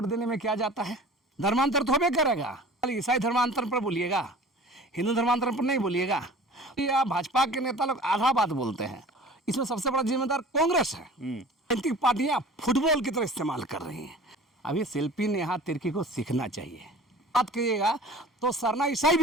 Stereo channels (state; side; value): normal; both; correlation 0.43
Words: देने में क्या जाता है? धर्मांतर तो होबे करेगा। ईसाई धर्मांतर पर बोलिएगा, हिंदू धर्मांतर पर नहीं बोलिएगा। या भाजपा के नेता लोग आधा बात बोलते हैं। इसमें सबसे बड़ा जिम्मेदार कांग्रेस है। राजनीतिक पार्टियां फुटबॉल की तरह इस्तेमाल कर रही हैं। अभी शिल्पी नेहा तिर्की को सीखना चाहिए। बात करिएगा तो सरना ईसाई